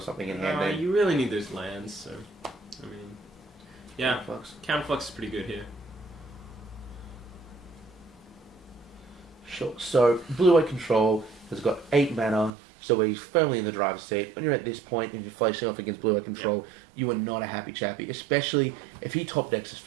in hand. Then. You really need those lands, so I mean, yeah, Counterflux is pretty good here. Sure. So blue-white control has got 8 mana, so he's firmly in the driver's seat. When you're at this point and you're facing off against blue-white control, you are not a happy chappy, especially if he top decks a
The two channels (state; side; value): drops out; left; at 12.5 s